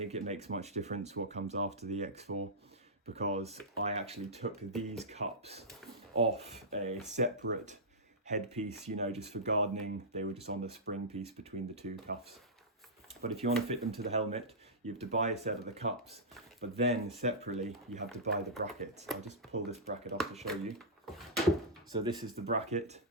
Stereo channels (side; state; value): both; normal; correlation -0.13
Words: it makes much difference what comes after the X4 because I actually took these cups off a separate headpiece, you know, just for gardening. They were just on the spring piece between the two cuffs. But if you want to fit them to the helmet, you have to buy a set of the cups, but then separately you have to buy the brackets. I'll just pull this bracket off to show you. So this is the bracket.